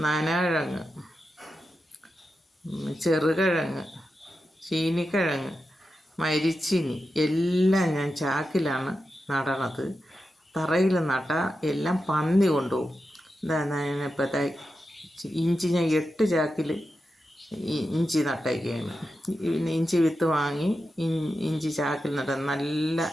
നനകിഴങ്ങ്, ചെറുകിഴങ്ങ്, ചീനിക്കിഴങ്ങ്, മരിച്ചിനി എല്ലാം ഞാൻ ചാക്കിലാണ് നടണത്. തറയിൽ നട്ടാൽ എല്ലാം പന്നി കൊണ്ടുപോകും. ഇപ്പോഴത്തെ ഇഞ്ചി ഞാൻ 8 ചാക്കിൽ ഇഞ്ചി നട്ടേക്കാണ്. പിന്നെ ഇഞ്ചി വിത്ത് വാങ്ങി ഇഞ്ചി ചാക്കിൽ നട്ട നല്ല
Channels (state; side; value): normal; both; correlation 0.90